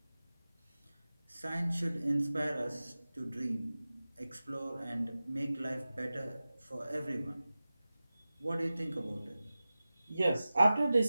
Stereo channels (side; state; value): both; inverted; correlation -0.96